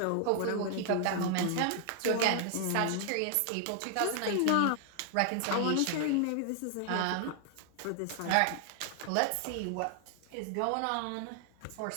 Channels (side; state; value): both; different; correlation 0.00